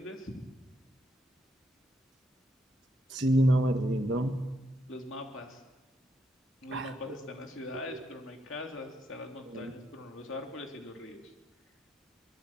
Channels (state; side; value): normal; both; correlation 0.78